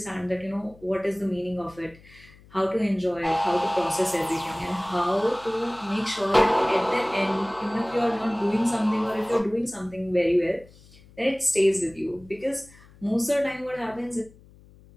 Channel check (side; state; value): left; noise; hum, 24 dB below the sound